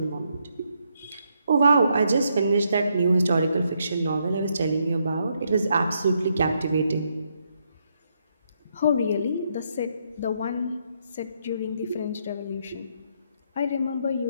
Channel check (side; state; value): both; inverted; correlation -0.77